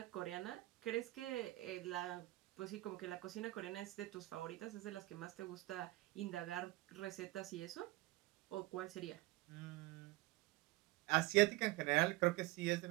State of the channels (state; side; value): quieter; left; 19.7 dB